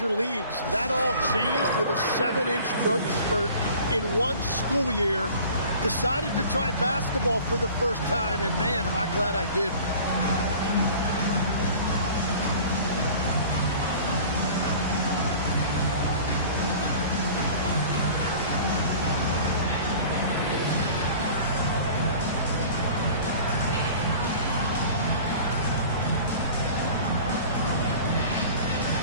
leagues. That all changed with a 7-inch growth spurt in one school year. Decided to try basketball for the first time, and man, am I glad I did.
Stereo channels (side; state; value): both; inverted; correlation -0.44